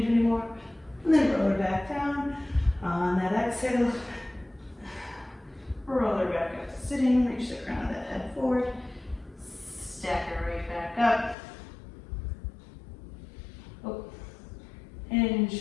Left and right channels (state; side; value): drops out; right; at 11.4 s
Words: anymore, and then roll her back down. On that exhale, roll her back up to sitting, reach the crown of the head forward, stack it right back up. Oh, hinge,